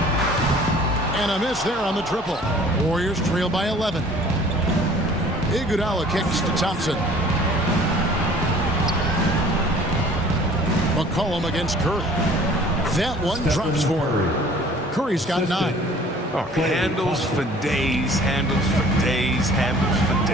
And a miss there on the triple. Warriors trail by 11. Iguodala kicks to Thompson. McCollum against Curry. That one drops for him. Curry's got 9. Oh, handles for days, handles for days, handles for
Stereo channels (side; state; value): both; normal; correlation 0.50